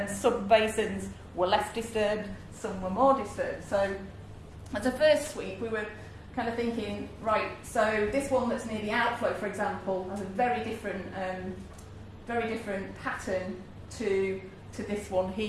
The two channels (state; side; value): identical; both; correlation 1.00